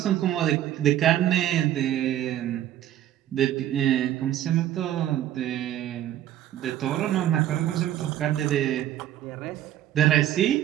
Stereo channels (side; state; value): left; quieter; 12.1 dB